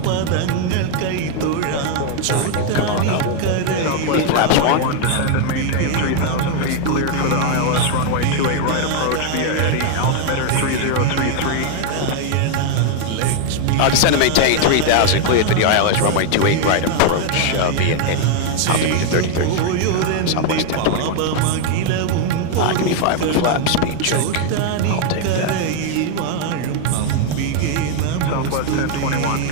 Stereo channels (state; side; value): different; both; correlation 0.00